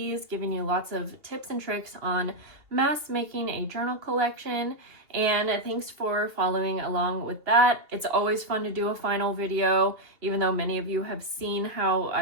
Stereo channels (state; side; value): late; left; 2.8 ms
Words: giving you lots of tips and tricks on mass making a journal collection, and thanks for following along with that. It's always fun to do a final video, even though many of you have seen how